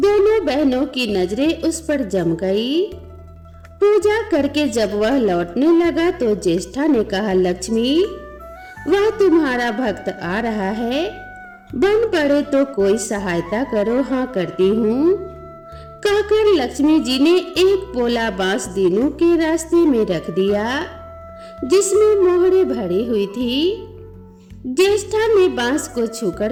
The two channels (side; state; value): both; identical; correlation 1.00